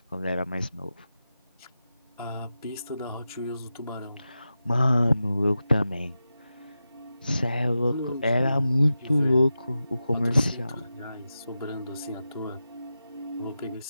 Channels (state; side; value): inverted; both; correlation -0.91